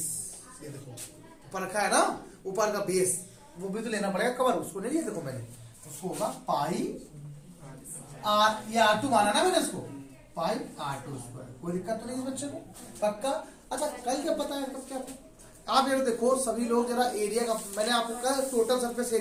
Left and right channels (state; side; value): identical; both; correlation 1.00